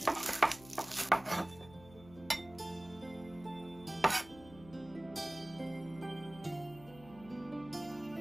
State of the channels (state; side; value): noise; left; hum, 19 dB below the sound